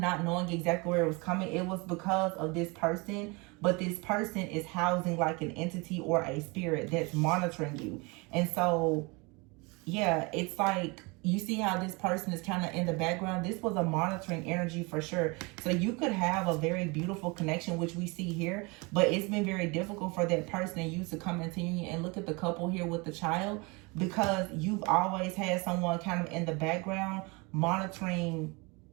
not knowing exactly where it was coming. It was because of this person, but this person is housing like an entity or a spirit that's monitoring you. And so yeah, it's like you see how this person is kind of in the background. This was a monitoring energy for sure. So you could have a very beautiful connection, which we see here, but it's been very difficult for that person and you to come into union. And look at the couple here with the child, because you've always had someone kind of in the background monitoring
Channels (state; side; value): quieter; left; 27.8 dB